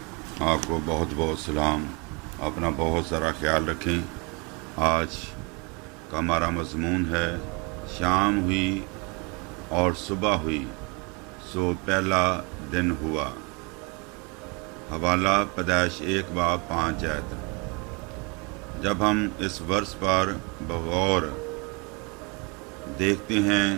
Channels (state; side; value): quieter; left; 30.5 dB